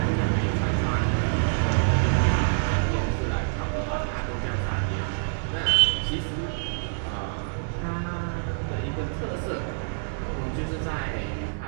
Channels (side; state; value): left; silent; digital silence